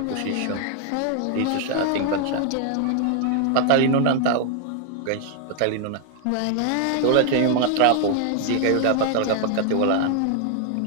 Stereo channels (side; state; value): both; different; correlation 0.00